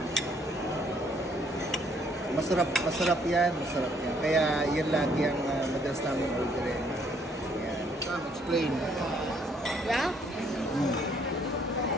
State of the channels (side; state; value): both; normal; correlation 0.66